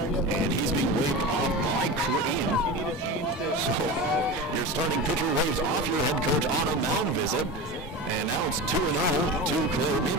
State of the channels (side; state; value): both; normal; correlation 0.27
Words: And he's being waved off by Crane. So your starting pitcher waves off your head coach on a mound visit. And now it's 2-0 to Claire